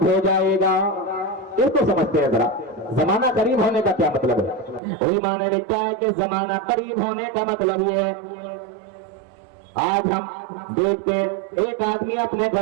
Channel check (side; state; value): left; drops out; at 4.8 s